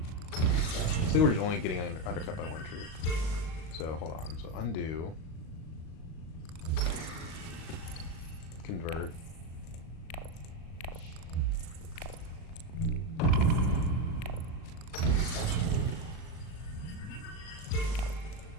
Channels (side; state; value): right; late; 38 ms